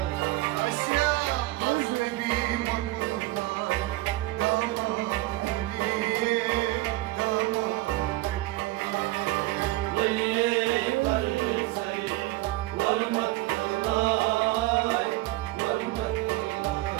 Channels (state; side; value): quieter; left; 18.7 dB